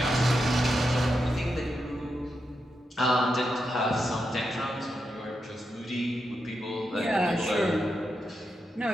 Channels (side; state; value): both; normal; correlation 0.86